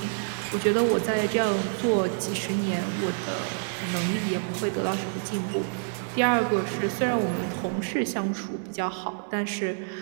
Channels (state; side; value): silent; left; digital silence